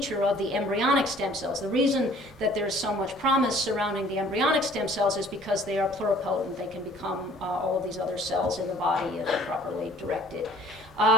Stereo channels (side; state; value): both; normal; correlation 0.54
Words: of the embryonic stem cells. The reason that there's so much promise surrounding the embryonic stem cells is because they are pluripotent. They can become all of these other cells in the body if properly directed.